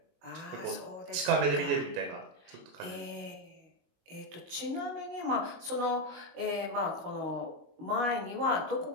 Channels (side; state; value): left; late; 21 ms